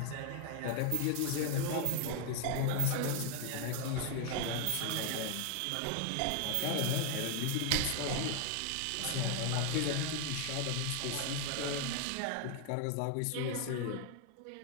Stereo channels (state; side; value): different; both; correlation 0.00